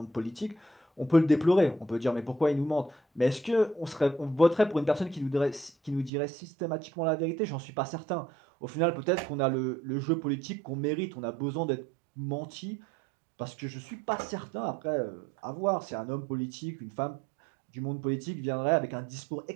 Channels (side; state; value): left; drops out; at 6.1 s